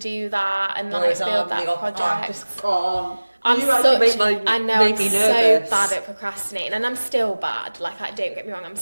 that and like build that project. I'm so bad at procrastinating, and I'm still bad. Like, don't get me wrong, I'm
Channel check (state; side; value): inverted; both; correlation -1.00